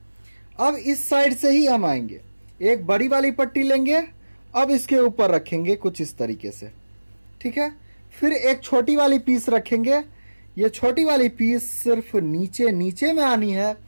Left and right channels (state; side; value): inverted; both; correlation -1.00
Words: अब इस साइड से ही हम आएंगे, एक बड़ी वाली पट्टी लेंगे, अब इसके ऊपर रखेंगे कुछ इस तरीके से। ठीक है, फिर एक छोटी वाली पीस रखेंगे। ये छोटी वाली पीस सिर्फ नीचे नीचे में आनी है